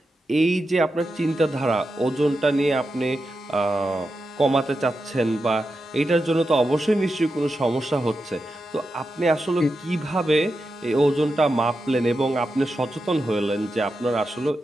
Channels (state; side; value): normal; both; correlation 0.89